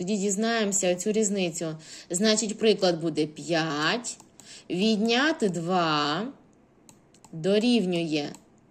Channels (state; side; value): identical; both; correlation 1.00